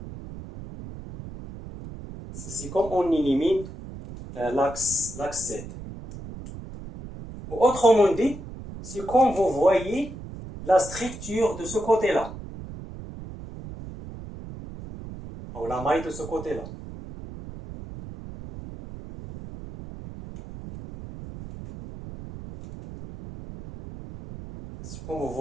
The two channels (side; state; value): right; noise; rumble, 12 dB below the sound